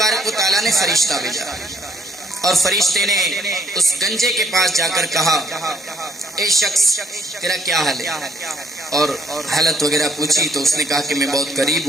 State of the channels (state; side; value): normal; both; correlation 0.67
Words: و تعالیٰ نے فرشتہ بھیجا، اور فرشتے نے اس گنجے کے پاس جا کر کہا اے شخص تیرا کیا حال ہے، اور حالت وغیرہ پوچھی تو اس نے کہا کہ میں بہت غریب